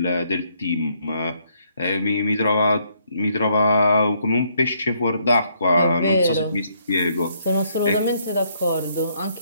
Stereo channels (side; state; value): both; inverted; correlation -0.71